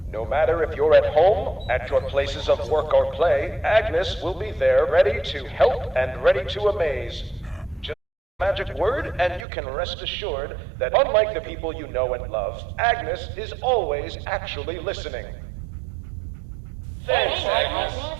No matter if you're at home, at your places of work or play, Agnes will be there ready to help and ready to amaze. Just magic word, and you can rest assured that unlike the people you know and love, Agnes is always actually listening. Thanks, Agnes.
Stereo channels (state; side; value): drops out; left; at 9.5 s